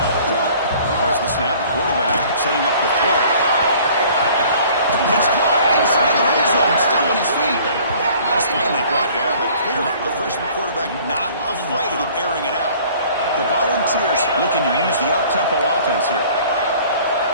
The snap, quarterback setting up the throw. It's caught inside the red zone, still on his feet. He's finally brought down, but clearly the freshman quarterback not afraid of airing it out. The Volunteers looking to use the up-tempo offense here.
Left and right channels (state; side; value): inverted; both; correlation -0.52